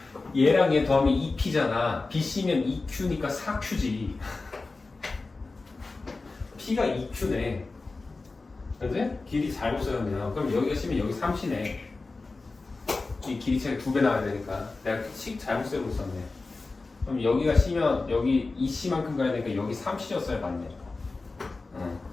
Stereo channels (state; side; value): quieter; right; 3.6 dB